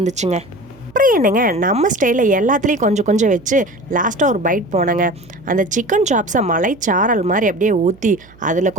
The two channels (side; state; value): right; noise; hum, 26 dB below the sound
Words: அப்புறம் என்னங்க, நம்ம ஸ்டைலில் எல்லாத்துலேயும் கொஞ்சம் கொஞ்சம் வச்சு லாஸ்ட்டாக ஒரு பைட் போனேங்க. அந்த சிக்கன் சாப்ஸை மலைச்சாரல் மாதிரி அப்படியே ஊற்றி அதில்